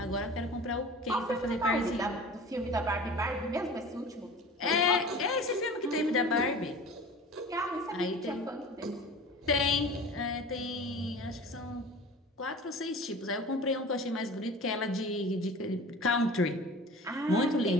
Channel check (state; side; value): normal; both; correlation 0.39